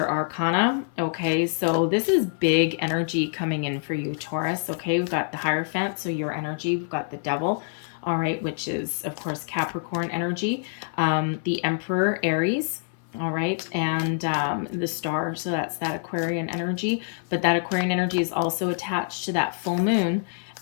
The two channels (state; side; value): silent; right; 61 dB below the other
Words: arcana. Okay, so this is big energy coming in for you, Taurus. Okay, we've got the Hierophant, so your energy. We've got the Devil, all right, which is, of course, Capricorn energy. The Emperor, Aries. All right, and the Star, so that's that Aquarian energy. But that Aquarian energy is also attached to that full moon